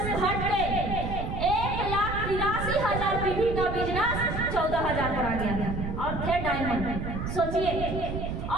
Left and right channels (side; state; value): right; noise; rumble, 4 dB below the sound